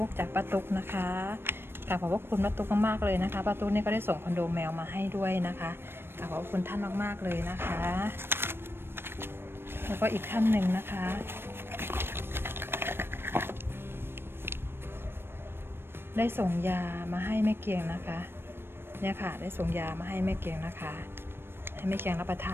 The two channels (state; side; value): late; left; 0.11 ms